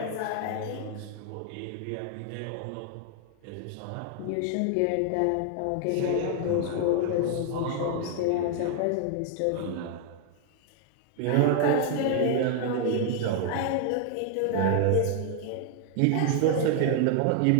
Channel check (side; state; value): both; different; correlation 0.00